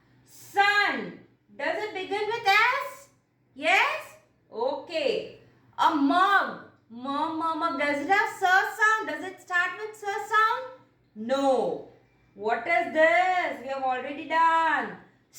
Sun. Does it begin with S? Yes? Okay. A mug. Mug. Does it have sound? Does it start with sound? No. What is this? We have already done.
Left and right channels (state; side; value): identical; both; correlation 1.00